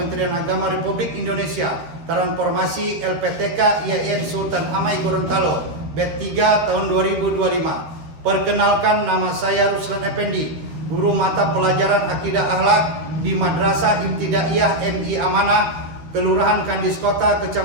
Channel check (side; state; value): left; late; 13 ms